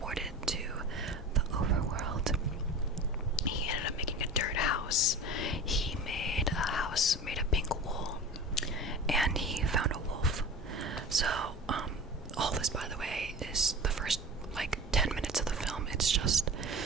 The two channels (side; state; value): both; normal; correlation 0.34